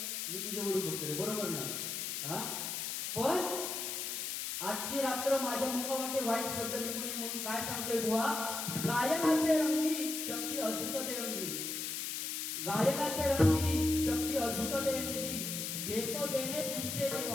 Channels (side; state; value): left; noise; hiss, 3 dB below the sound